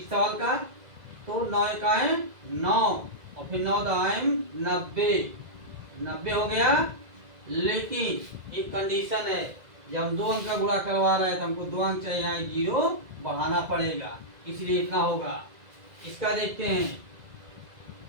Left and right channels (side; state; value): left; late; 2.0 ms